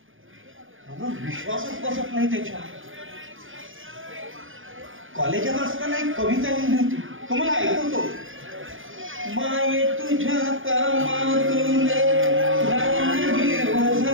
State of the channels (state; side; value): late; left; 0.58 ms